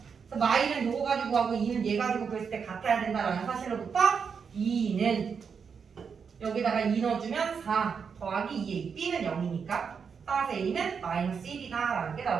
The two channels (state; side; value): quieter; left; 6.2 dB